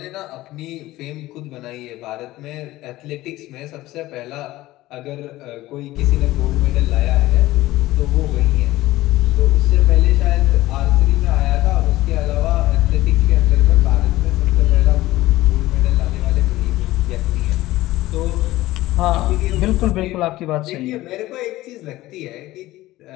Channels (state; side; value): quieter; right; 17.1 dB